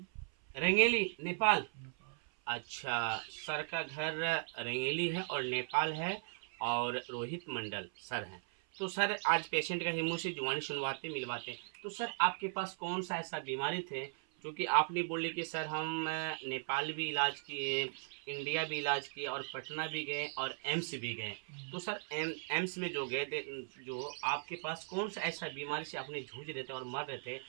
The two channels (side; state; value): left; silent; 52 dB below the other